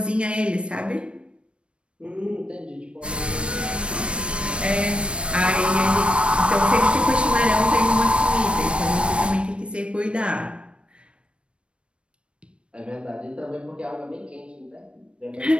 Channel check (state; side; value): late; left; 0.059 ms